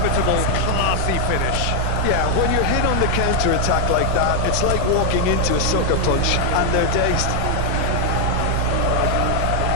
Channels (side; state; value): both; different; correlation 0.00